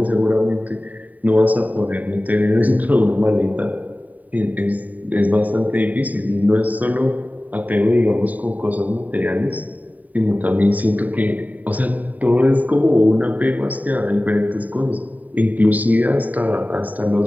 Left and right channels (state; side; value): late; left; 0.075 ms